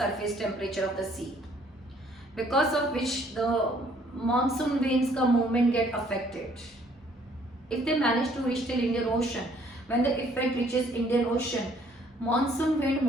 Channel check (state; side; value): normal; both; correlation 0.62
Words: temperature of the sea. Because of which the monsoon winds ka movement get affected. If they manage to reach till Indian Ocean, when the effect reaches Indian Ocean, monsoon wind